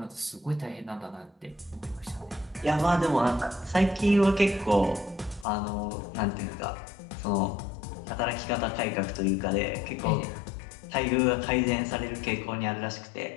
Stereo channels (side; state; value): right; drops out; at 5.5 s